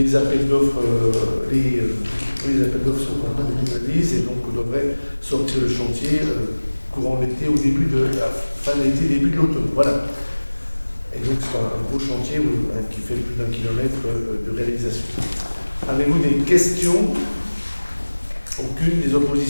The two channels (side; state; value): both; inverted; correlation -1.00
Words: appels d'offres sont en train de analyse et donc on devrait sortir le chantier courant l'été, au début de la fin de l'été, début de l'automne. Voilà. Et donc c'est un gros chantier qui fait plus d'1 kilomètre de réalisation. Avez-vous des questions? Aucune, des